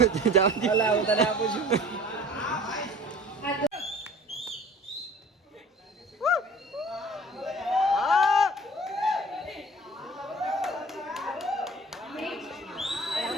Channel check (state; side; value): normal; both; correlation 0.46